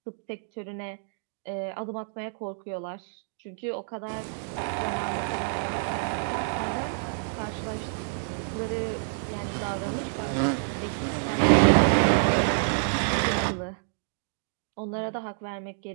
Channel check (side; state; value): left; silent; digital silence